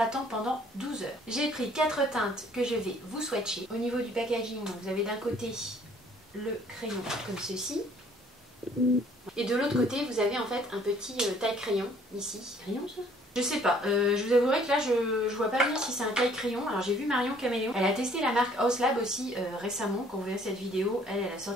pendant 12 heures. J'ai pris 4 teintes que je vais vous swatcher. Au niveau du packaging, vous avez d'un côté le crayon comme ceci. Et de l'autre côté, vous avez en fait un petit taille-crayon ici. Crayon ça ? Je sais pas, je vous avouerai que là je vois pas bien si c'est un taille-crayon. Alors j'ai vu Marion Caméléon, elle a testé la marque Haus Lab aussi récemment. Quand vous verrez cette vidéo, elle a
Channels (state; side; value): normal; both; correlation 0.59